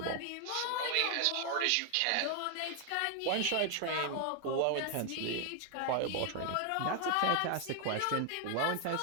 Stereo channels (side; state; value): both; different; correlation 0.00